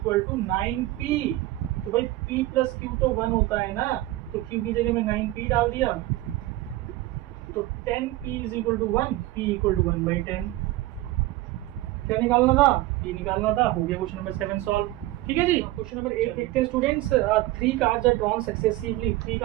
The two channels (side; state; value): left; quieter; 17.2 dB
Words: to 9p। तो भाई p प्लस q तो 1 होता है ना, तो q की जगह में 9p डाल दिया, तो 10p is equal to 1, p equal to 1/10। क्या निकालना था, p निकालना था। हो गया क्वेश्चन नंबर 7 सॉल्व। ठीक है जी, क्वेश्चन नंबर 8 देखते हैं students. 3 cards are drawn successively, 3